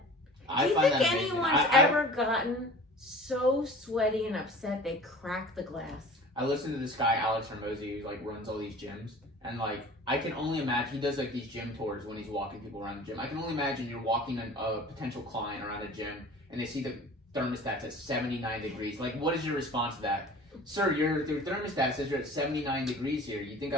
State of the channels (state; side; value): normal; both; correlation 0.42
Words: Do you think anyone's ever gotten so sweaty and upset they crack the glass? I listened to this guy Alex Hermosi who like runs all these gyms, and like I can only imagine he does like these gym tours when he's walking people around the gym. I can only imagine you're walking a potential client around a gym and they see the thermostat's at 79 degrees. Like, what is your response to that? Sir, your thermostat says you're at 79 degrees here. You think